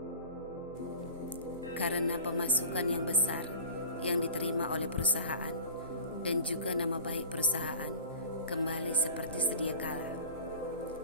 Karena pemasukan yang besar yang diterima oleh perusahaan dan juga nama baik perusahaan kembali seperti sedia kala,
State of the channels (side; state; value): both; inverted; correlation -0.39